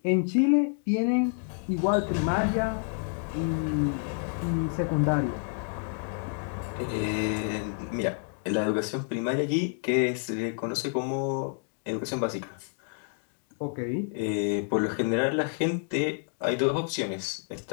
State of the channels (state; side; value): silent; right; 59 dB below the other